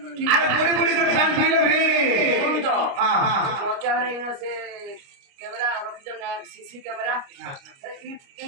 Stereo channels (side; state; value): left; late; 29 ms